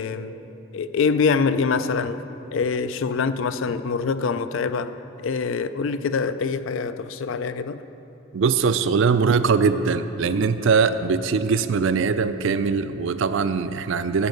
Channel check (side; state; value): both; normal; correlation 0.10